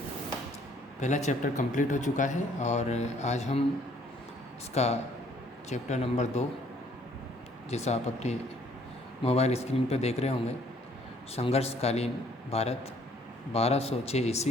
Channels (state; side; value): normal; both; correlation 0.62